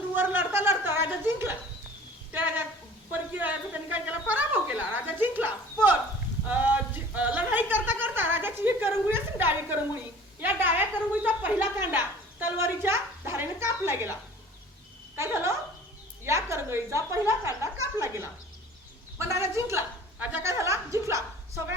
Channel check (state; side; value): normal; both; correlation 0.47